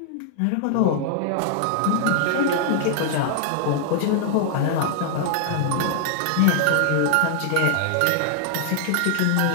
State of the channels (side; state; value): both; different; correlation 0.00